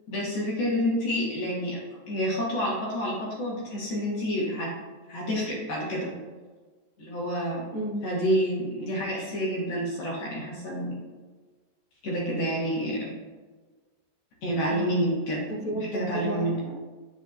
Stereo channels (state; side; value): late; right; 14 ms